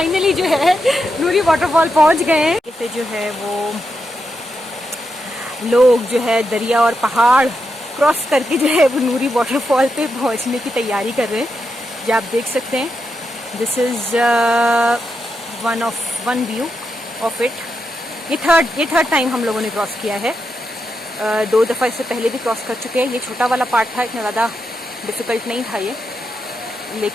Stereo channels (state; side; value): normal; both; correlation 0.85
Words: जो है नूरी वाटरफॉल पहुंच गए हैं। इसे जो है वो लोग जो है दरिया और पहाड़ क्रॉस करके जो है वो नूरी वाटरफॉल पे पहुंचने की तैयारी कर रहे हैं। ये आप देख सकते हैं, this is one view of it. ये थर्ड टाइम हम लोगों ने क्रॉस किया है। 2 दफ़ा इससे पहले भी क्रॉस कर चुके हैं। ये छोटा वाला पार्ट था, इतना ज़्यादा डिफ़िकल्ट नहीं था ये,